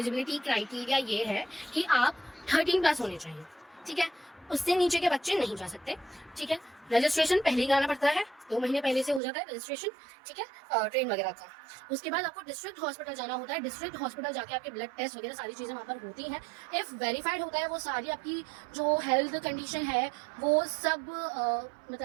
क्राइटेरिया ये है कि आप 13+ होने चाहिए। ठीक है, उससे नीचे के बच्चे नहीं जा सकते। ठीक है, रजिस्ट्रेशन पहले ही कराना पड़ता है, 2 महीने पहले से हो जाता है रजिस्ट्रेशन। ठीक है, ट्रेन वगैरह का। उसके बाद आपको डिस्ट्रिक्ट हॉस्पिटल जाना होता है। डिस्ट्रिक्ट हॉस्पिटल जाके आपके ब्लड टेस्ट वगैरह सारी चीज़ें वहाँ पर होती हैं। इफ़ वेरीफाइड होता है वो सारी आपकी जो हेल्थ कंडीशन है वो सब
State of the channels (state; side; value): drops out; left; at 9.2 s